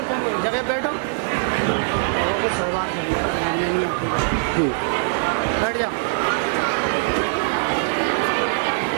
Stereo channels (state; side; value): silent; left; digital silence